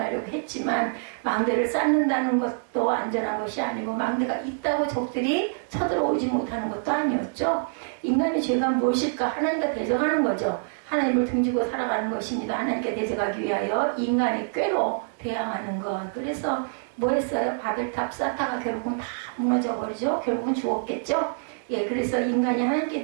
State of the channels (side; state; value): left; silent; 61 dB below the other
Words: 했지만 망대를 쌓는다는 것도 안전한 것이 아니고 망대가 있다고 적들이 쳐들어오지 못하는 것도 아니었죠. 인간의 죄가 무엇일까? 하나님과 대적하는 거죠. 하나님을 등지고 살아가는 것입니다. 하나님께 대적하기 위하여 인간의 꾀로 대항하는 것. 그래서 뭐 했어요? 바벨탑 쌓다가 결국은 다 무너져 버리죠. 결국은 죽었겠죠. 예, 그래서 인간이 하나님께